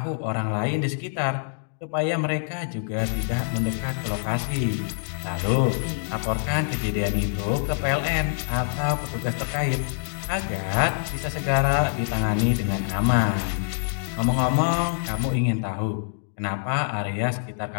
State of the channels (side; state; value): right; silent; digital silence